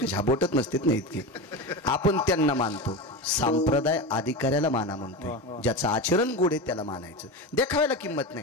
बोटत नसतात ना इतके. आपण त्यांना मानतो. संप्रदाय अधिकाऱ्याला माना म्हणतो. ज्याचं आचरण गोड आहे त्याला मानायचं. देखाव्याला किंमत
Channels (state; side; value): normal; both; correlation 0.22